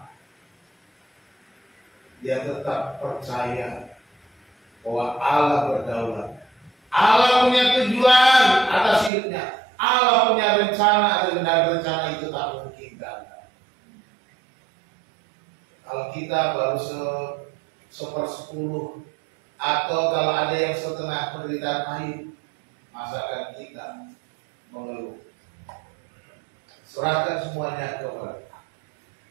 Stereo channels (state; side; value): drops out; left; at 9.1 s